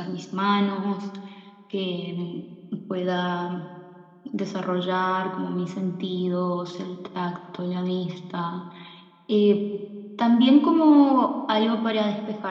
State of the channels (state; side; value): identical; both; correlation 1.00